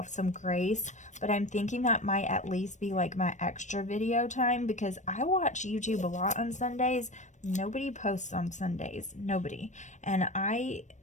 some grace, but I'm thinking that might at least be like my extra video time because I watch YouTube a lot on Sundays. Nobody posts on Sundays. Nobody. And I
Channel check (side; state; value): right; late; 0.35 ms